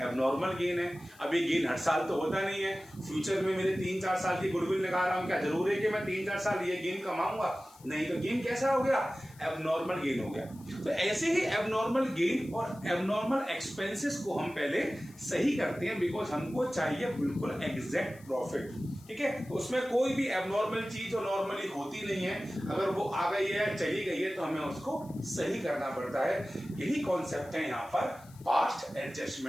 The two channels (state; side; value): noise; left; hiss, 25 dB below the sound